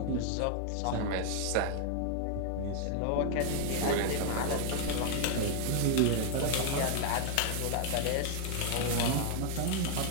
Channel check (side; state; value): both; different; correlation 0.00